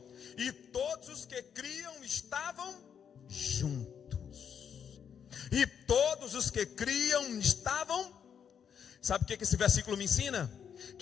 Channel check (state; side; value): quieter; right; 7.8 dB